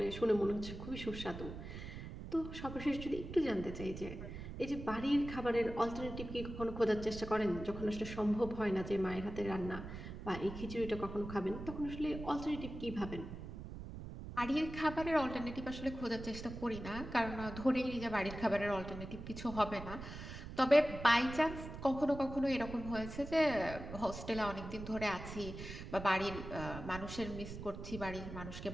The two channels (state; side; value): noise; right; rumble, 9 dB below the sound